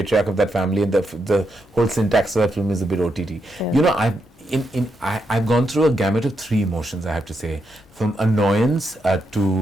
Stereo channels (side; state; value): both; normal; correlation 0.82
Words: of that family, and the whole syntax of that film is a bit OTT. I've gone through a gamut of 3 emotions, I have to say, from annoyance